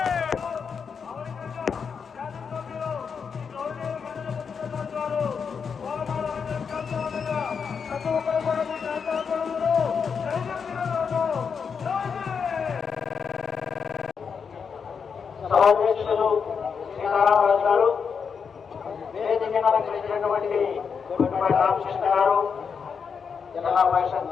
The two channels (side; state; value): right; quieter; 6.2 dB